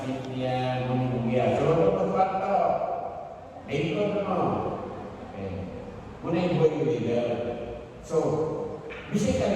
niya, muna yung buya. So, ano pa ito? Ito mo. Okay. Muna yung boy leader. So,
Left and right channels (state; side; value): identical; both; correlation 1.00